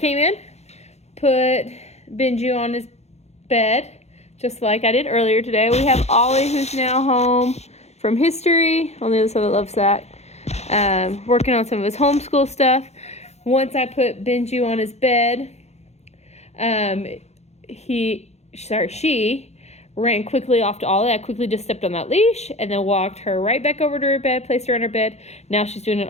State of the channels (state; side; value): late; right; 0.31 ms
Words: in, put Benji on his bed, just like I did earlier today. We have Ollie, who's now home from history on the other side of the love sack, working on some of his homeschool stuff. Once I put Benji on his bed, she ran quickly off to Ollie. I quickly just stepped on that leash and then walked her right back over to her bed, placed her on her bed. Now she's doing an